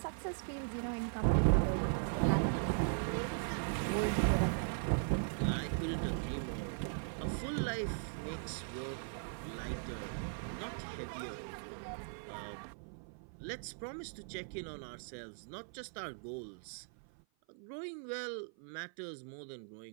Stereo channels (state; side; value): silent; left; 52 dB below the other